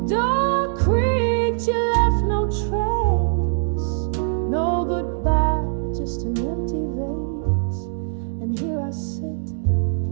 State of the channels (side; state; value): left; silent; 63 dB below the other